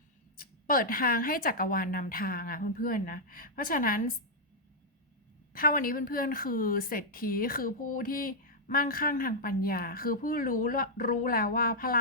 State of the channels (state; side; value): normal; both; correlation -0.06